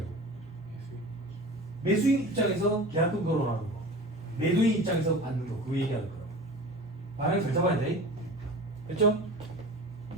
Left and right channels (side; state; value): both; normal; correlation 0.36